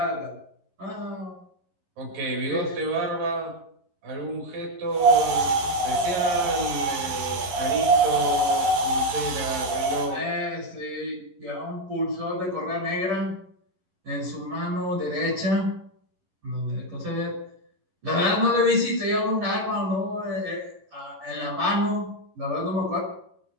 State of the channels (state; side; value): late; left; 11 ms